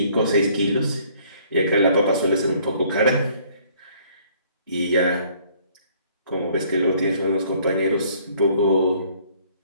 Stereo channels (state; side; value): inverted; both; correlation -0.60